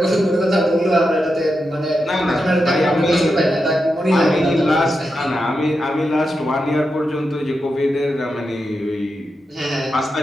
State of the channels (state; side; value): normal; both; correlation 0.87